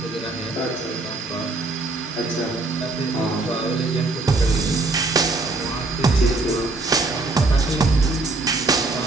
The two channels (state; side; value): quieter; left; 3.3 dB